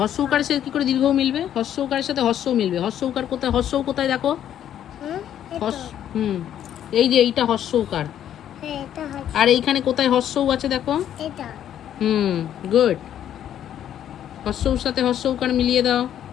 উকারের সাথে কি করে দীর্ঘও মিলবে? হর্ষ উকারের সাথে হর্ষও মিলবে। হর্ষ উকার কোথায়? হর্ষও কোথায় দেখো? হ্যাঁ হর্ষ, হুম, এই যে এইটা হর্ষ উকার। হ্যাঁ এটা হচ্ছে। আর এইখানে কোথায় হর্ষও আছে দেখো? এটা হুম, গুড। হর্ষর সাথে হর্ষ উকার মিলিয়ে দাও।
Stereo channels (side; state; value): right; quieter; 10.5 dB